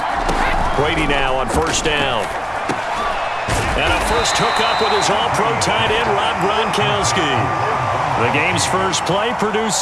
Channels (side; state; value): both; identical; correlation 1.00